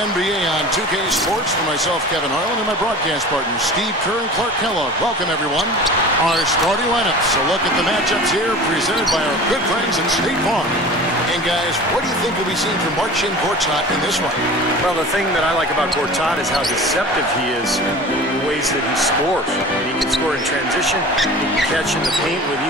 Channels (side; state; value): both; normal; correlation 0.38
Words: on 2K Sports for myself, Kevin Harlan, and my broadcast partners, Steve Kerr and Clark Kellogg. Welcome, everyone. Our starting lineups. A look at the matchups here, presented by our good friends at State Farm. And guys, what do you think we'll be seeing from Marcin Gortat in this one? Well, the thing that I like about Gortat is how deceptive he is in the ways that he scores. He can score in transition, he can catch in the paint with